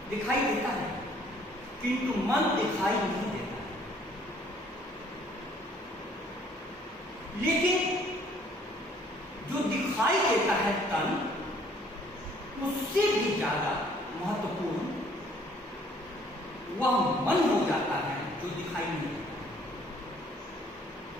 दिखाई देता है किंतु मन दिखाई नहीं देता है। लेकिन जो दिखाई देता है तन, उससे भी ज्यादा महत्वपूर्ण वह मन हो जाता है जो दिखाई नहीं देता।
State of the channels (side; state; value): both; normal; correlation 0.60